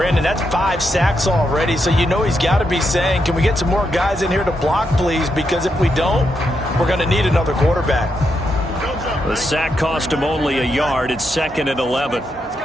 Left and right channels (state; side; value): normal; both; correlation 0.82